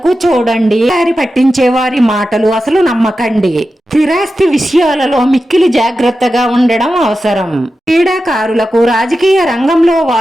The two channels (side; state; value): both; normal; correlation 0.92